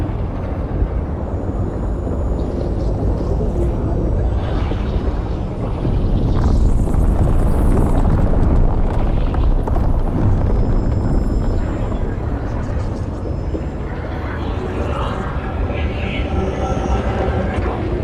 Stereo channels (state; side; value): identical; both; correlation 1.00